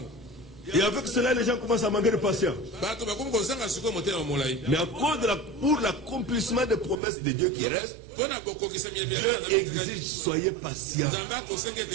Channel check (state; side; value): drops out; left; at 7.0 s